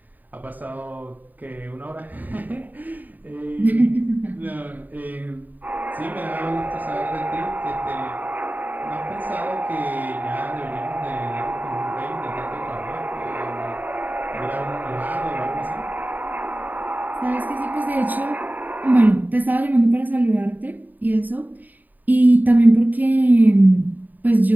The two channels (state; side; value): late; left; 0.085 ms